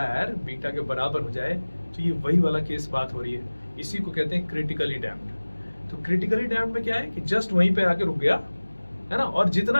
बीटा के बराबर हो जाए, तो ये वही वाला केस बात हो रही है, इसी को कहते हैं क्रिटिकली डैम्प्ड। तो क्रिटिकली डैम्प्ड में क्या है कि जस्ट वहीं पे आके रुक गया, है ना, और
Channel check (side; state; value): both; inverted; correlation -1.00